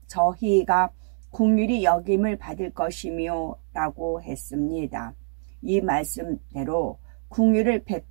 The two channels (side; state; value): left; silent; 62 dB below the other